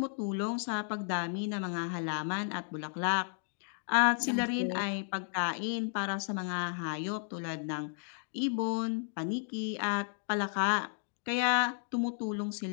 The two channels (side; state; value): right; silent; digital silence